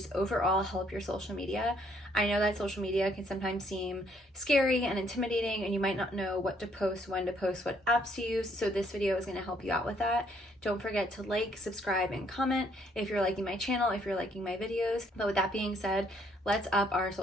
overall help your social media. I know that social media can sometimes seem scary and intimidating, and you might not know what to post, when to post, what apps to use, so this video is going to help you out with that. Don't forget to like, subscribe, and comment if you're liking my channel, if you're liking my videos. But with that being said, let's up our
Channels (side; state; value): both; normal; correlation 0.67